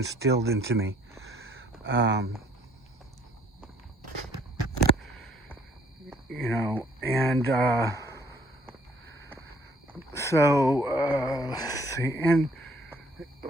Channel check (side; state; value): both; normal; correlation 0.61